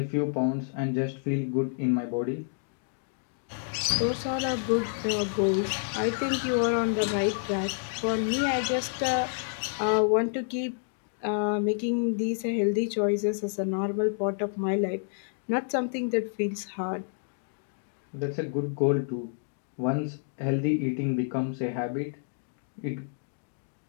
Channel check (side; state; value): right; silent; digital silence